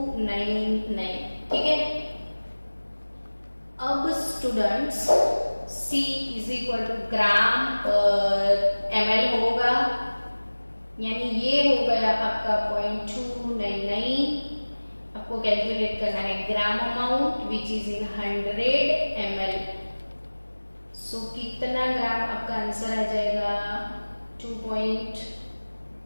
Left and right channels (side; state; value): both; inverted; correlation -1.00